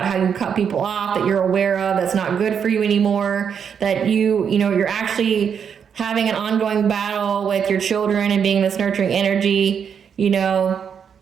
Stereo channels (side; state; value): left; quieter; 7.4 dB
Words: how you cut people off that you're aware of, that's not good for you anymore, that you know, you're actually having an ongoing battle with your children and being this nurturing energy, you know,